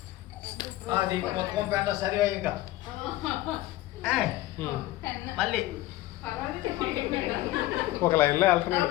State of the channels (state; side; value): quieter; right; 16.4 dB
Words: అది మొత్తం పెంట సరిగా ఇంకా మళ్ళీ ఒక లైన్లో వెళ్తున్నాడు.